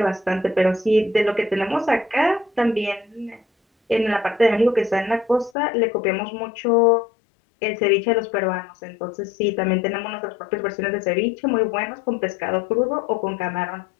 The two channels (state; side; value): drops out; right; at 5.5 s